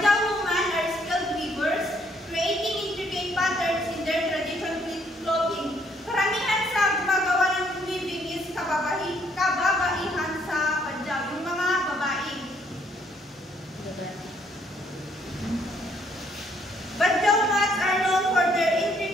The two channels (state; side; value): normal; both; correlation 0.67